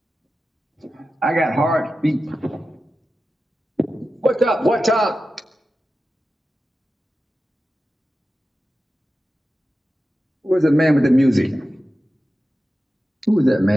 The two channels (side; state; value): both; normal; correlation 0.93